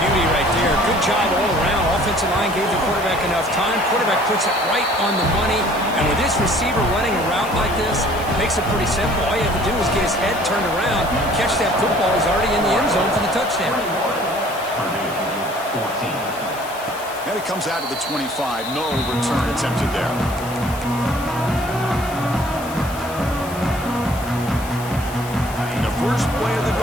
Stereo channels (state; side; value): noise; left; hiss, 16 dB below the sound